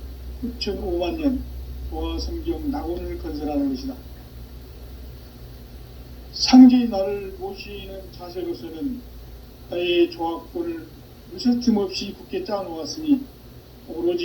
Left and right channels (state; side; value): identical; both; correlation 1.00